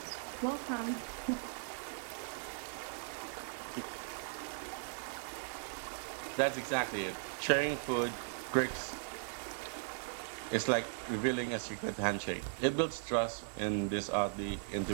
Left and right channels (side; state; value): left; silent; digital silence